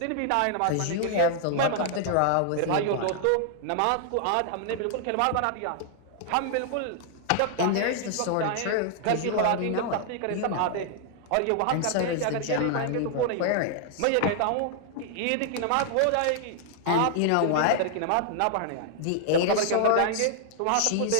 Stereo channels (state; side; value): different; both; correlation 0.00